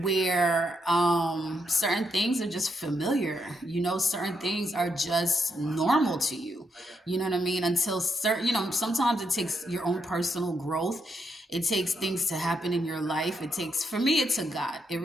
certain things are just familiar. Certain things are just normal to you. You know what I mean? Until sometimes it takes your own personal growth. It takes things to happen in your life. For me, it took God. It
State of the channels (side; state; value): both; normal; correlation 0.80